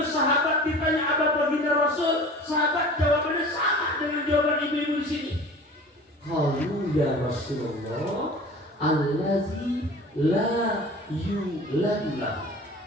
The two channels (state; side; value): normal; both; correlation 0.41